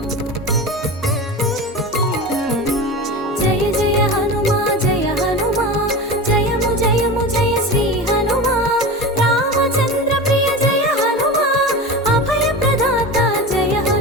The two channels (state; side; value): normal; both; correlation 0.27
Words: జయ జయ హనుమా జయ హనుమా, జయము జయము జయ శ్రీ హనుమా. రామచంద్ర ప్రియ జయ హనుమా, అభయ ప్రదాత జయ